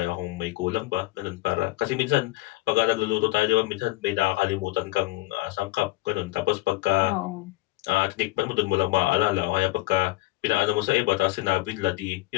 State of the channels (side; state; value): right; quieter; 19.1 dB